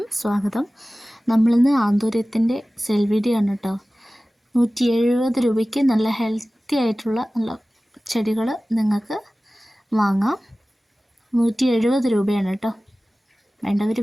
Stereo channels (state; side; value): normal; both; correlation 0.97